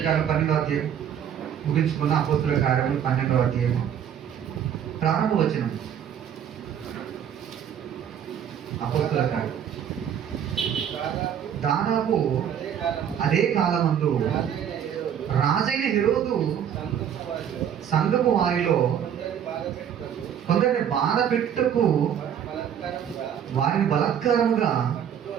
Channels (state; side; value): quieter; left; 9.0 dB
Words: కార్యాలు 12వ అధ్యాయం ముగించుకున్న అపోస్తల కార్యాలు 12వ అధ్యాయం ప్రారంభ వచనం. అపోస్తల కార్యం దాదాపు అదే కాలమందు రాజైన హెరోదు సంఘపు వారిలో కొందరిని బాధ పెట్టుటకు వారిని బలాత్కారముగా